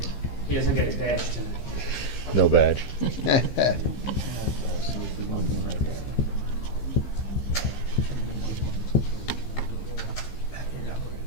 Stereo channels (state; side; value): late; right; 15 ms